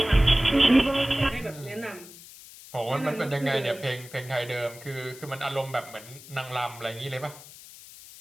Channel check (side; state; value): left; noise; hiss, 18 dB below the sound